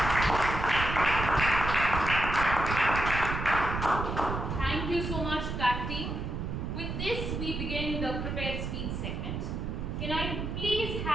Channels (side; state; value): right; noise; rumble, 4 dB below the sound